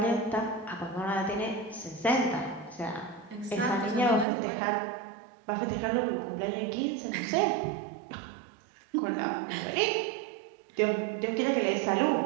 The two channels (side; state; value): left; drops out; at 4.2 s